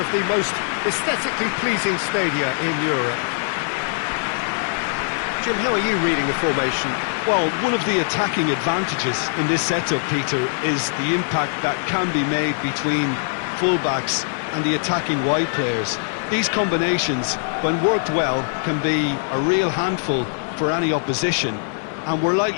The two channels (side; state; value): right; silent; digital silence